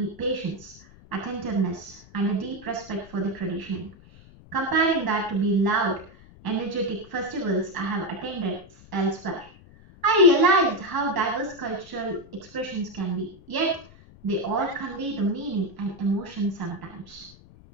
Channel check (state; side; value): noise; left; rumble, 22 dB below the sound